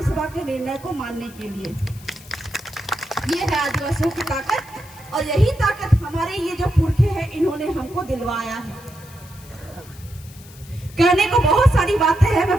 सभा के निर्णय को मानने के लिए। ये है आदिवासियों की ताकत, और यही ताकत हमारे ये जो पुरखे हैं इन्होंने हमको दिलवाया है। कहने को बहुत सारी बातें हैं, मैं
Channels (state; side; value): noise; left; hiss, 21 dB below the sound